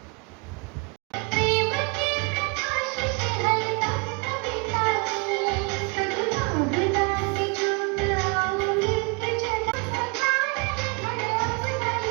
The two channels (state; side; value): quieter; left; 31.6 dB